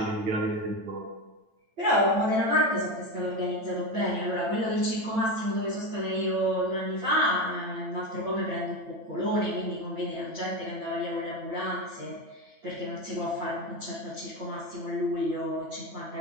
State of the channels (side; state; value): left; late; 9.0 ms